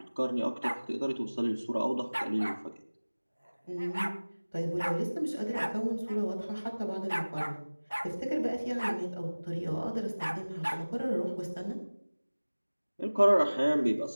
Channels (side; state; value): both; inverted; correlation -1.00